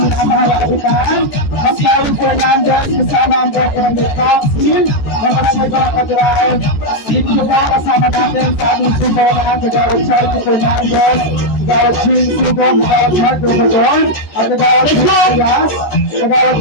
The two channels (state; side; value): late; right; 13 ms